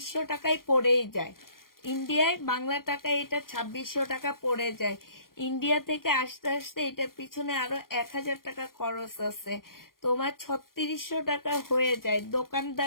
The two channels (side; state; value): right; late; 0.91 ms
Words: টাকায় পড়েই যায়। ইন্ডিয়ায় বাংলা টাকায় এটা 2600 টাকা পড়ে যায়। ইন্ডিয়া থেকে আসতে আসতে এটার পিছনে আরো 1000 টাকা খরচ আছে, তোমার 3600 টাকা হয়ে যায়।